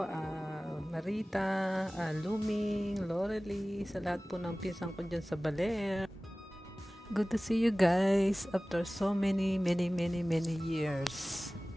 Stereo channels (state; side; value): normal; both; correlation 0.98